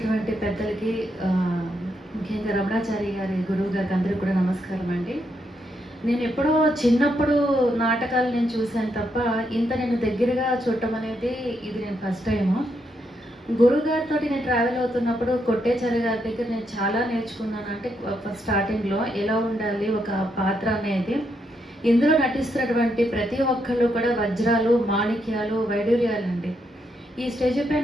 పెద్దలకి, ముఖ్యంగా రమణాచారి గారి గురువు గారికి అందరికీ కూడా నమస్కారం అండి. నేను ఎప్పుడో చిన్నప్పుడు నాటకాలు నేను చూశాను తప్ప ఇంత నేను దగ్గరగా చూడటం అనేది ఇది నేను ఫస్ట్ టైము. గురుగారితో నేను ట్రావెల్ అవుతున్నప్పుడు కొట్టేచారి గారి దగ్గర నేను చాలా నేర్చుకున్నాను. అంటే ఫస్ట్ స్టార్టింగ్లో ఎలా ఉండాలి ఒక పాత్ర అనేది. ఇందులో నటిస్తున్నటువంటి ప్రతి ఒక్కళ్ళు కూడా వజ్రాలు, మాణిక్యాలు, వైడూర్యాలు అండి. ఈ స్టేజ్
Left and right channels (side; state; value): both; normal; correlation 0.79